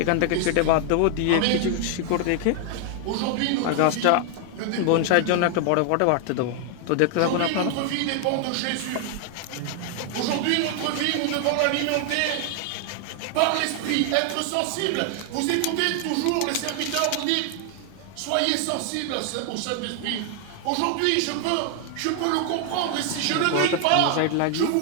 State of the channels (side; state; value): both; different; correlation 0.00